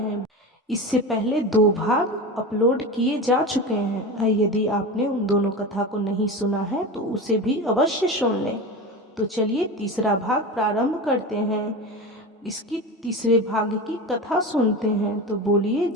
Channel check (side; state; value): both; normal; correlation 0.26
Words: इससे पहले 2 भाग अपलोड किए जा चुके हैं। यदि आपने उन दोनों कथा को नहीं सुना है तो उसे भी अवश्य सुन लें। तो चलिए तीसरा भाग प्रारंभ करते हैं। इसकी तीसरे भाग की कथा सुनते हैं। तो बोलिए